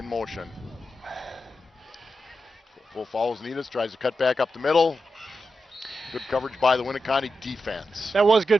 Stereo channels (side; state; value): both; normal; correlation 0.89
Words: motion. Full follows Needus, tries to cut back up the middle. Good coverage by the Winneconne defense. That was